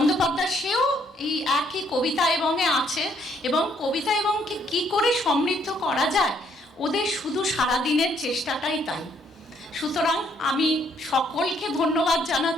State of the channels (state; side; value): normal; both; correlation 0.68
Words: সেও এই একই কবিতা এবংয়ে আছে, এবং কবিতা এবংকে কি করে সমৃদ্ধ করা যায় ওদের শুধু সারাদিনের চেষ্টাটাই তাই। সুতরাং আমি সকলকে ধন্যবাদ